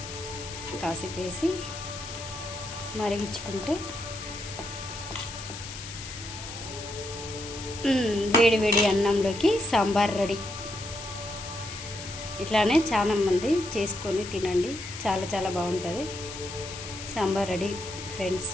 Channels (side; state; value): left; noise; hiss, 11 dB below the sound